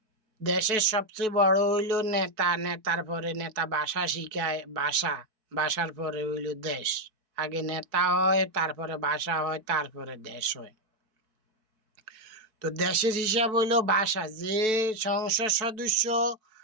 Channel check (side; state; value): left; late; 4.6 ms